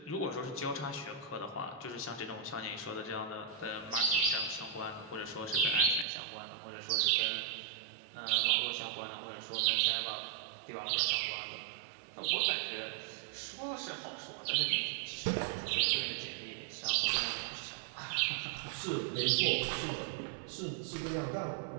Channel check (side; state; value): left; drops out; at 6.1 s